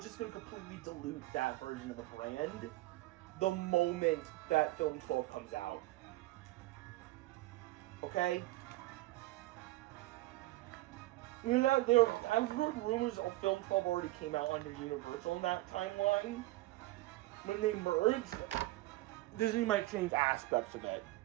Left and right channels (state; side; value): quieter; left; 18.6 dB